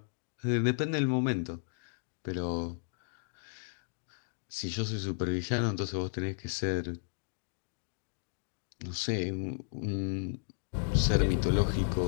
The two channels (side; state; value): right; silent; digital silence